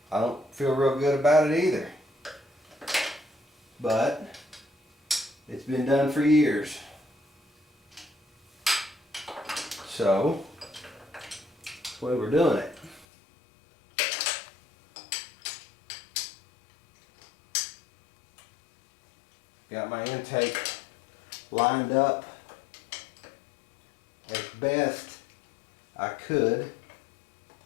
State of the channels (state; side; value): drops out; right; at 13.1 s